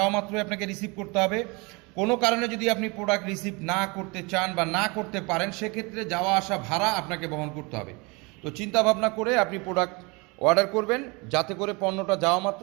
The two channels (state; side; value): quieter; left; 27.9 dB